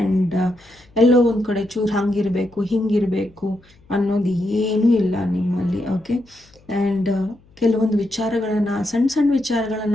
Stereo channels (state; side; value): noise; left; hum, 29 dB below the sound